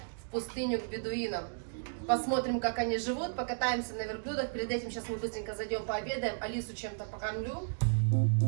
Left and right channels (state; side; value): silent; left; digital silence